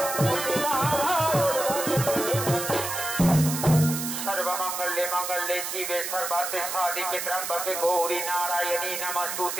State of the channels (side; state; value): right; noise; hiss, 4 dB below the sound